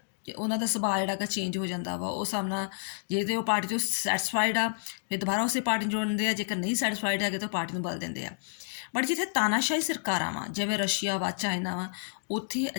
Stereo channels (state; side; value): silent; right; digital silence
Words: ਕਿ ਉਹਨਾਂ ਦਾ ਸੁਭਾਅ ਜਿਹੜਾ ਹੈਗਾ ਚੇਂਜ ਹੋ ਜਾਂਦਾ ਵਾ। ਉਹ ਸਾਹਮਣਾ ਜੇ ਤਾਂ ਉਹ ਪਾਰਟੀ ਤੋਂ ਸੈਟਿਸਫਾਈਡ ਆ ਫਿਰ ਦੁਬਾਰਾ ਉਸੇ ਪਾਰਟੀ ਨੂੰ ਜੋੜਦੇ ਆ, ਜੇਕਰ ਨਹੀਂ ਸੈਟਿਸਫਾਈਡ ਹੈਗੇ ਤਾਂ ਪਾਰਟੀ ਨੂੰ ਬਦਲ ਦਿੰਦੇ ਆ। ਬਟ ਜਿੱਥੇ ਤਾਨਾਸ਼ਾਹੀ ਸਰਕਾਰਾਂ ਵਾ ਜਿਵੇਂ ਰਸ਼ੀਆ ਵਾ, ਚਾਈਨਾ ਵਾ, ਉੱਥੇ